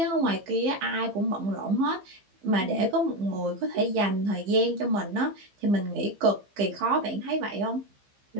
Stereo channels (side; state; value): left; late; 15 ms